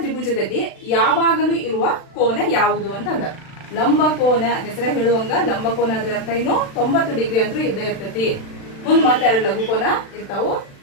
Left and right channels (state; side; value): late; right; 36 ms